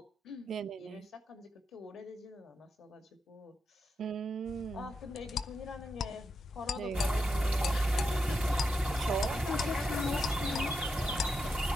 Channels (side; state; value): both; normal; correlation 0.85